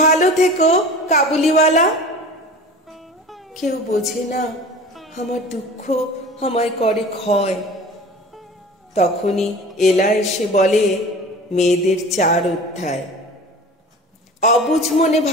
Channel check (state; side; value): normal; both; correlation 0.39